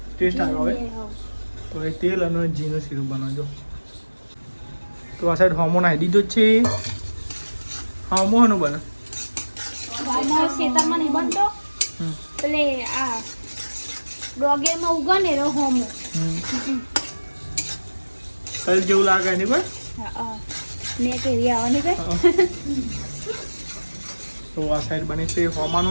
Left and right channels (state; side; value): inverted; both; correlation -1.00